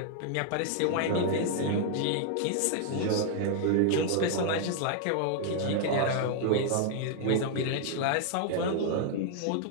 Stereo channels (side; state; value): both; different; correlation 0.00